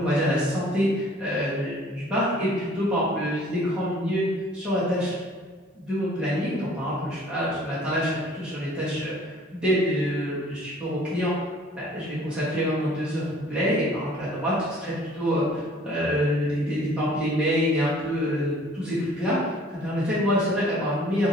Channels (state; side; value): normal; both; correlation 0.53